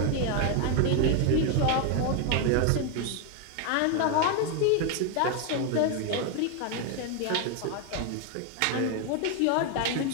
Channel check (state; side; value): different; both; correlation 0.01